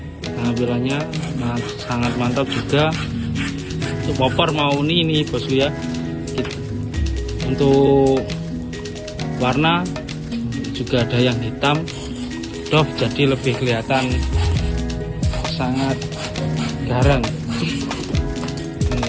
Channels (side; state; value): both; identical; correlation 1.00